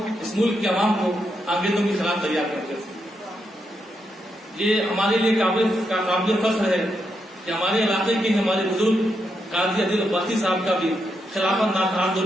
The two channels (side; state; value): both; normal; correlation 0.82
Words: اس ملک کے عوام کو انگریزوں کے خلاف تیار کرتے تھے. یہ ہمارے لیے قابل فخر ہے کہ ہمارے علاقے کے ہمارے بزرگ قاضی عادل عباسی صاحب کا بھی خلافت